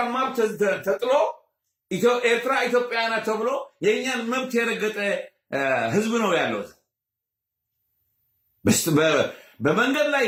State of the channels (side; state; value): both; identical; correlation 1.00